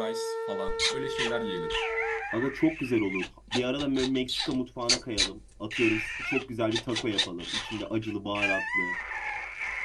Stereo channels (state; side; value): identical; both; correlation 1.00